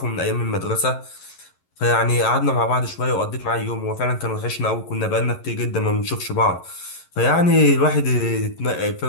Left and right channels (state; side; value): late; right; 11 ms